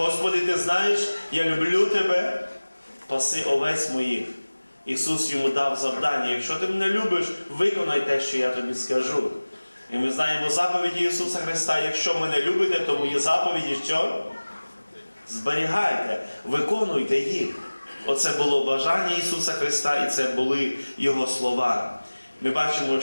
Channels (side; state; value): both; inverted; correlation -1.00